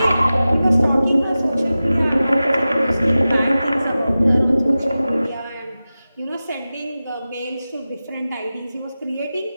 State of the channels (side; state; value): both; inverted; correlation -0.95